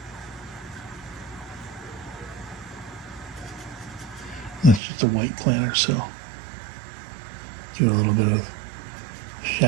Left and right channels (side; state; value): left; drops out; at 4.8 s